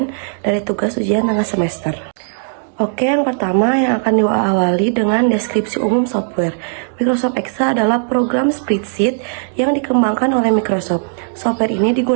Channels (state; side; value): silent; left; digital silence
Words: dari tugas ujian tengah semester. Oke, yang pertama yang akan diawali dengan deskripsi umum software. Microsoft Excel adalah program spreadsheet yang dikembangkan oleh Microsoft. Software ini